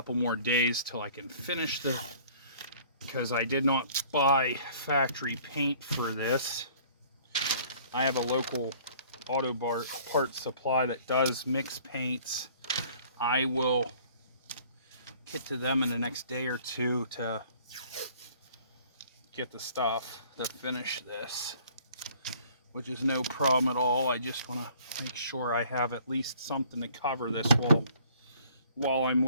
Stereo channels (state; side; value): inverted; both; correlation -0.54